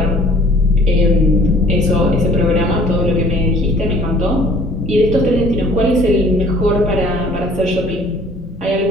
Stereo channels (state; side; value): normal; both; correlation 0.54